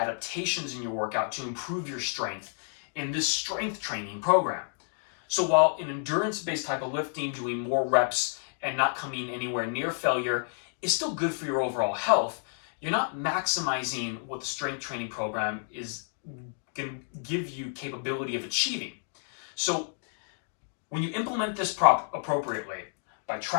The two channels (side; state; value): right; silent; digital silence